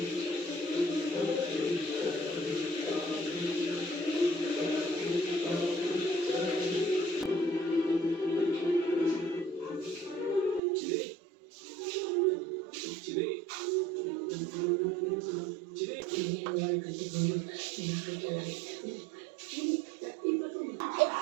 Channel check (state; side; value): drops out; left; at 10.6 s